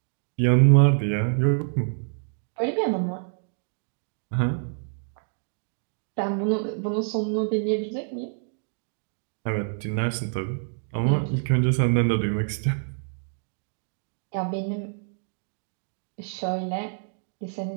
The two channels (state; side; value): silent; left; digital silence